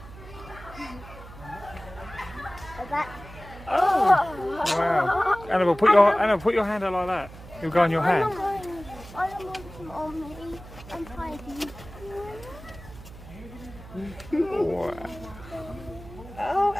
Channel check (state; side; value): noise; right; hum, 16 dB below the sound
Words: Oh! Wow. Annabelle, put your hand out like that. He'll go on your hand. I don't want him on me. I'm tidy. Wow. Oh,